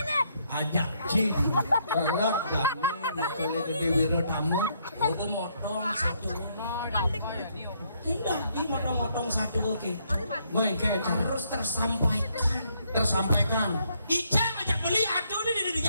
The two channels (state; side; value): inverted; both; correlation -0.72